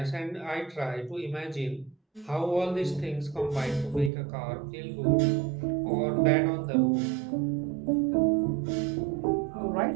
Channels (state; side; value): drops out; left; at 4.1 s